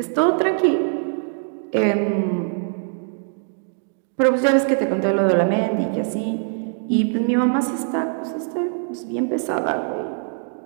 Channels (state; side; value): silent; left; digital silence